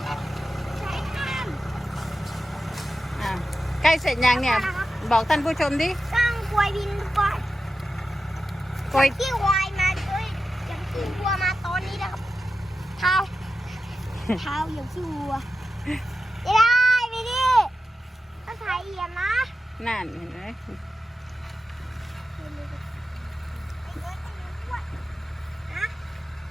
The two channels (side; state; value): both; normal; correlation 0.92